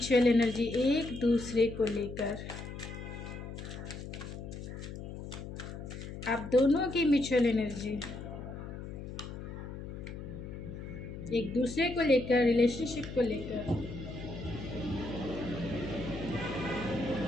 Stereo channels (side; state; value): left; noise; hum, 9 dB below the sound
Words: एनर्जी एक दूसरे को लेकर। आप दोनों की म्यूचुअल एनर्जी एक दूसरे को लेकर, रिलेशनशिप को लेकर।